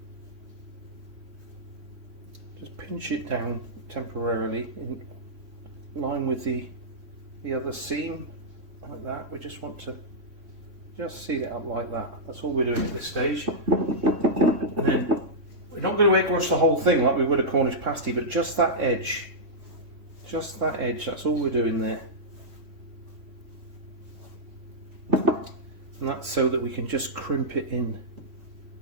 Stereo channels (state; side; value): late; left; 3.3 ms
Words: Just pinch it down temporarily in line with the other seam, like that. We just want to just seal it up like that. That's all we're doing at this stage. And then we're not going to egg wash the whole thing like we would a Cornish pasty, but just that edge. Just that edge, that's all we're doing there. And that's so that we can just crimp it in,